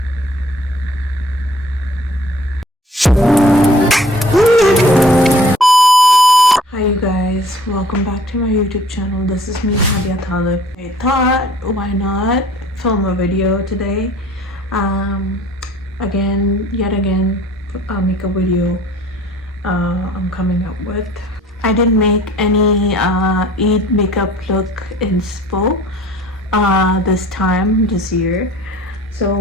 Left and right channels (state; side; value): normal; both; correlation 0.53